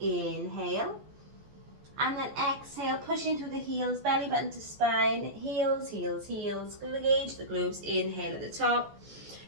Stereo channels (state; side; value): late; left; 14 ms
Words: And then exhale, pushing through the heels, belly button to spine. Heels, heels, heels. Engage the glutes. Inhale at the top.